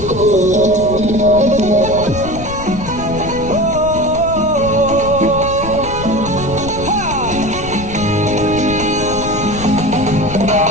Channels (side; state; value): left; noise; rumble, 11 dB below the sound